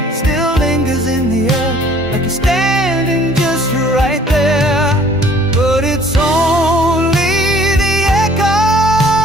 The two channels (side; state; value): both; normal; correlation 0.55